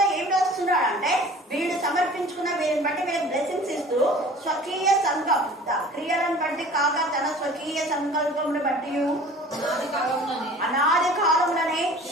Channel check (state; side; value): normal; both; correlation 0.45